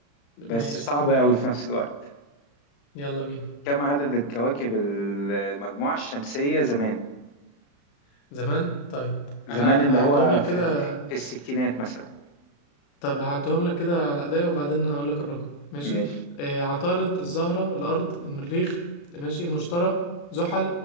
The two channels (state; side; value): late; right; 35 ms